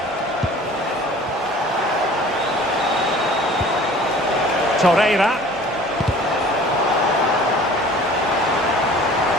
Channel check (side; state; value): both; normal; correlation 0.47